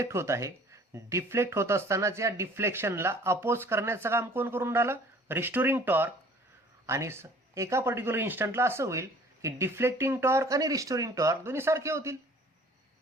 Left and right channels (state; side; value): normal; both; correlation 0.52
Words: होत आहे. डिफ्लेक्ट होत असतानाच या डिफ्लेक्शनला अपोज करण्याचं काम कोण करून राहिलं? Restoring torque. आणि एका पर्टिक्युलर इन्स्टंटला असं होईल की डिफ्लेक्टिंग टॉर्क आणि रिस्टोरिंग टॉर्क दोन्ही सारखे होतील.